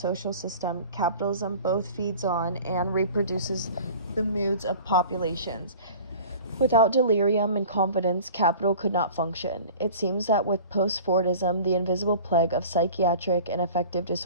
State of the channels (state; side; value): inverted; both; correlation -0.42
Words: system, capitalism both feeds on and reproduces the moods of populations. Without delirium and confidence, capital could not function. It seems that with post-Fordism, the invisible plague of psychiatric and affective